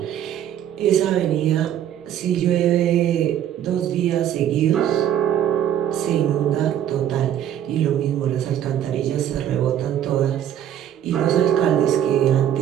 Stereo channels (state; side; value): quieter; left; 10.5 dB